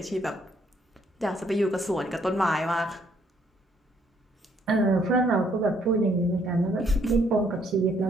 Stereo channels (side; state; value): both; normal; correlation 0.68